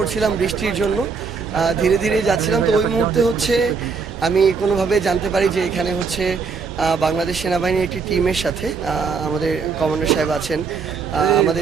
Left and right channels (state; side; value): quieter; left; 5.2 dB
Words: বৃষ্টির জন্য, ধীরে ধীরে যাচ্ছিলাম। তো ওই মুহূর্তে হচ্ছে আমি কোনোভাবে জানতে পারি যে এখানে হচ্ছে বাংলাদেশ সেনাবাহিনীর একটি টিমের সাথে আমাদের কমান্ডার সাহেব আছেন, আমাদের